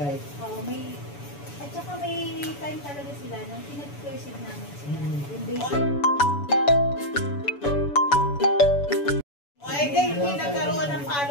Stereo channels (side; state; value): right; late; 7.0 ms